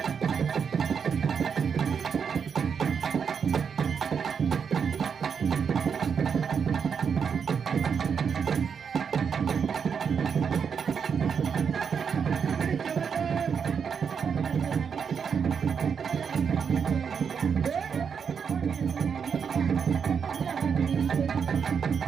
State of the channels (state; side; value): quieter; left; 6.7 dB